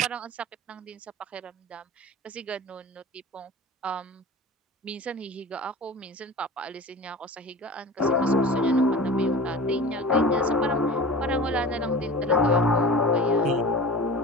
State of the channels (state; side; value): normal; both; correlation 0.36